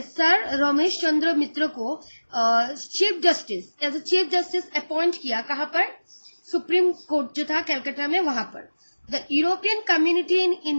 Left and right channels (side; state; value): both; inverted; correlation -1.00